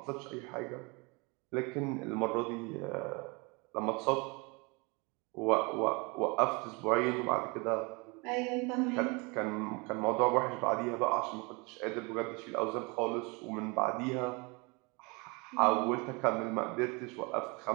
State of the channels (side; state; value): left; quieter; 28.9 dB